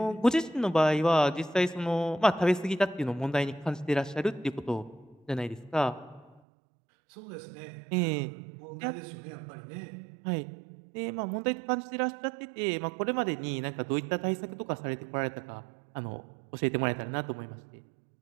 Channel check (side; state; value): left; drops out; at 6.4 s